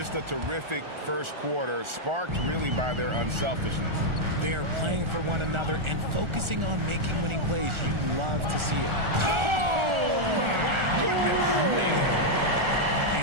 a terrific first quarter, sparked really by their unselfishness. They are playing for one another and focusing on making winning plays. You love to see it. Oh, my goodness, man.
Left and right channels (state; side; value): late; left; 1.4 ms